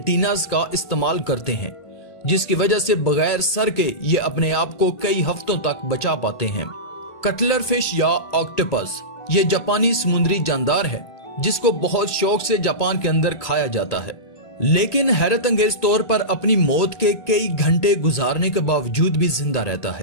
का इस्तेमाल करते हैं, जिसकी वजह से बगैर सर के ये अपने आप को कई हफ्तों तक बचा पाते हैं। कटलर फिश या ऑक्टोपस ये जापानी समुद्री जानदार है जिसको बहुत शौक से जापान के अंदर खाया जाता है, लेकिन हैरत अंगेज तौर पर अपनी मौत के कई घंटे गुजारने के बावजूद भी जिंदा रहता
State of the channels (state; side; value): late; right; 1.9 ms